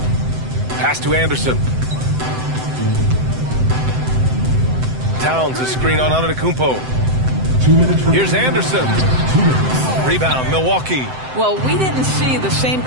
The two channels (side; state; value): left; late; 7.8 ms